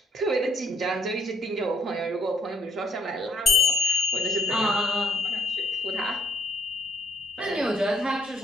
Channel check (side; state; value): both; normal; correlation 0.65